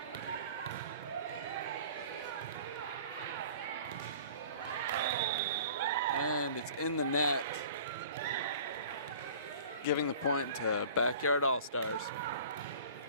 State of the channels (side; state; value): both; inverted; correlation -0.46